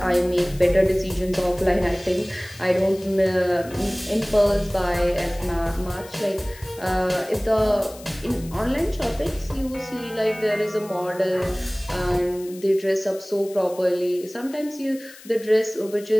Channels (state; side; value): noise; left; hiss, 20 dB below the sound